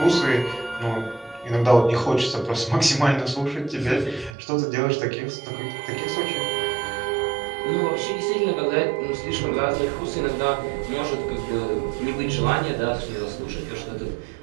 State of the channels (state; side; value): drops out; left; at 4.4 s